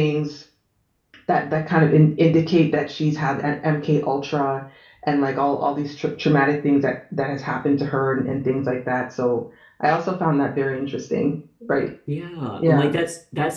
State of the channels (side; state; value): both; identical; correlation 1.00